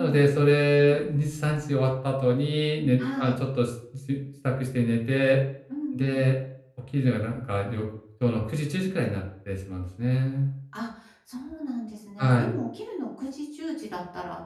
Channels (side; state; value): both; identical; correlation 1.00